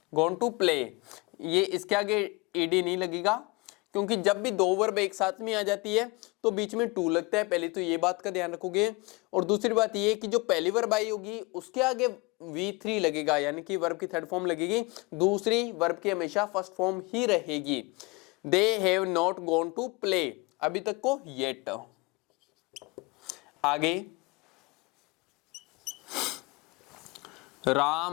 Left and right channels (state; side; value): quieter; right; 25.8 dB